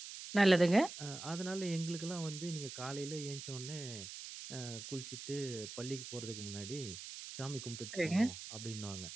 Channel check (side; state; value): right; noise; hiss, 10 dB below the sound